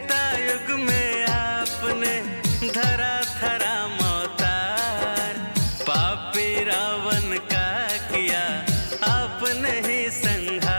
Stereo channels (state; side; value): inverted; both; correlation -1.00